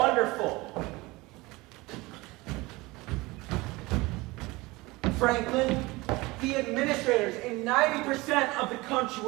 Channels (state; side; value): quieter; left; 22.1 dB